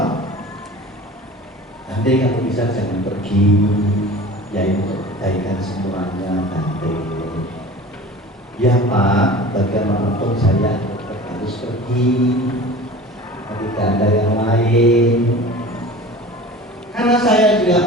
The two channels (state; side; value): normal; both; correlation 0.39